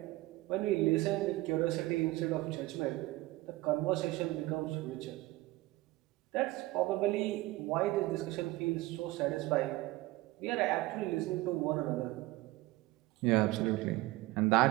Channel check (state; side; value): quieter; left; 19.2 dB